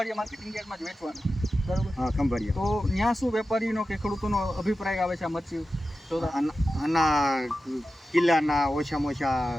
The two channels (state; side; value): normal; both; correlation 0.93